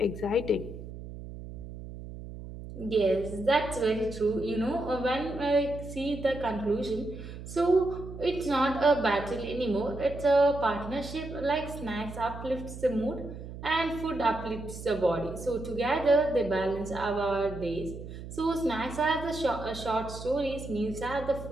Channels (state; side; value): noise; right; hum, 11 dB below the sound